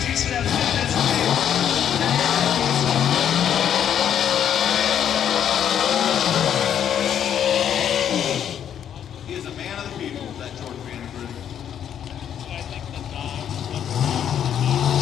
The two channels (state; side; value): quieter; right; 9.4 dB